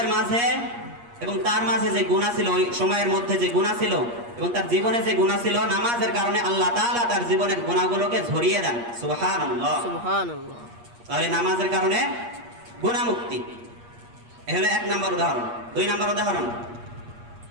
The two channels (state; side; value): late; left; 8.5 ms